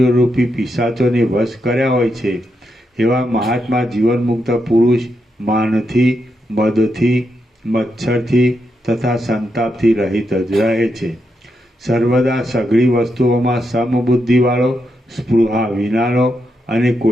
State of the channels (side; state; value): both; normal; correlation 0.83